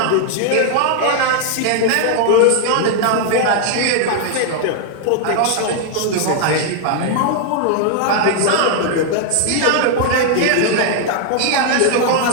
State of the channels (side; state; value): both; different; correlation 0.00